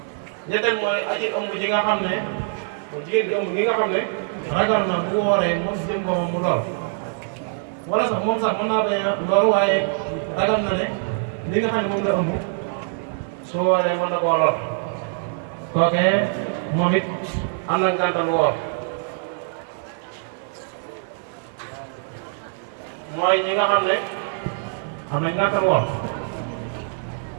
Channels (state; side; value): silent; left; 55 dB below the other